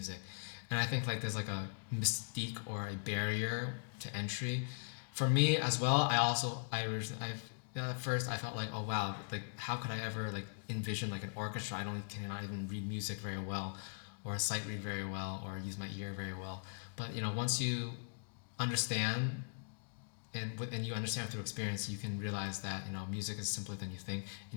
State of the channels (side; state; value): right; silent; digital silence